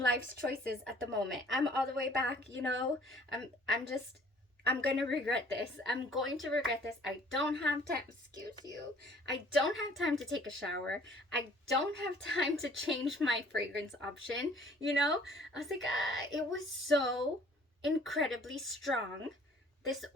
choices at the moment. I'm all the way back, you know. I'm gonna regret this. I'm going to regret this. I don't have time. Excuse you. I don't have time to take a shower. I don't have time to change my fragrance option. You know, I was like, it was so incredibly strong, this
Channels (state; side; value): normal; both; correlation 0.55